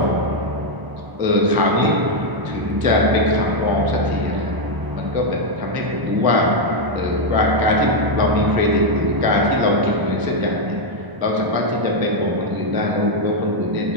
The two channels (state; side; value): late; left; 1.0 ms